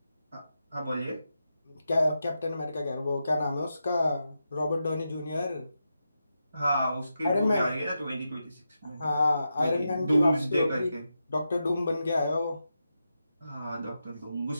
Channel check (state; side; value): inverted; both; correlation -0.88